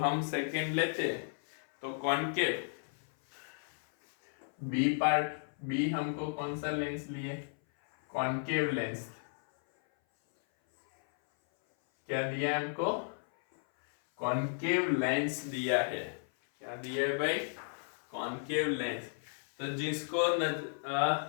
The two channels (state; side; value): silent; right; 55 dB below the other